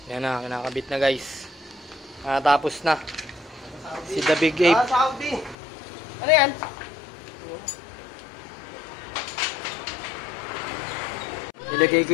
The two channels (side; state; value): right; drops out; at 5.6 s